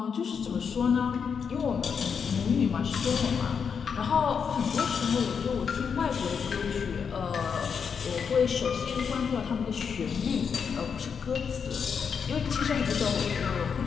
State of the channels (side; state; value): right; quieter; 6.5 dB